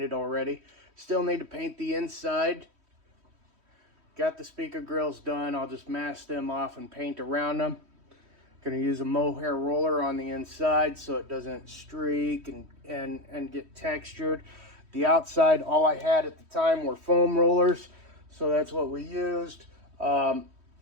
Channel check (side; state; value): left; late; 3.1 ms